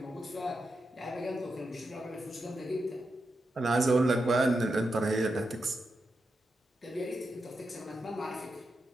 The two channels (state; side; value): normal; both; correlation 0.87